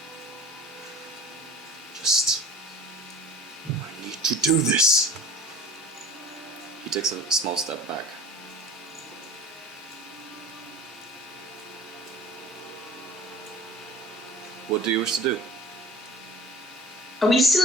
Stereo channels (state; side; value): normal; both; correlation 0.43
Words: I need to do this. He takes a small step back. What do you wish to do? Are we